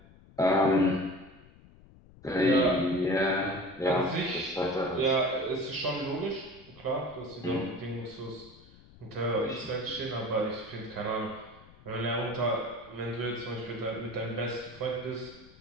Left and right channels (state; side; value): noise; left; rumble, 23 dB below the sound